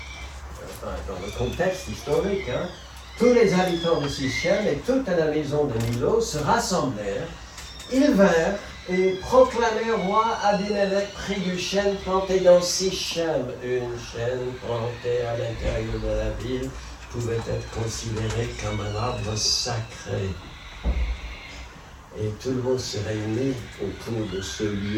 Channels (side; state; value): both; identical; correlation 1.00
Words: le contexte historique, hein, tous les habitants de Sichem et toute la maison de Milo se rassemblèrent. Ils vinrent et proclamèrent roi Abimelech près du chêne planté dans Sichem. Une chaîne plantée à l'intérieur de la ville pouvait être considérée comme un arbre sacré. Et tout le monde se réunit autour de ce